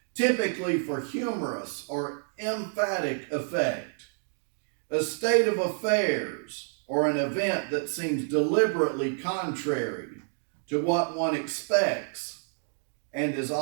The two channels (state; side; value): silent; left; 59 dB below the other